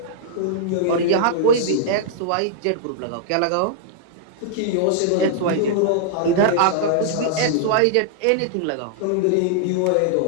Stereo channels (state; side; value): different; both; correlation -0.01